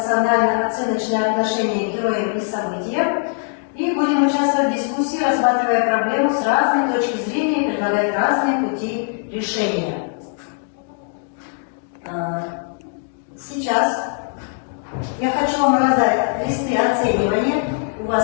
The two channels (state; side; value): silent; right; 58 dB below the other